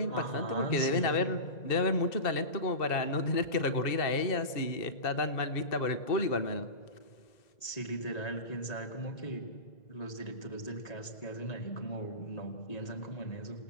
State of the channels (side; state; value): right; late; 2.0 ms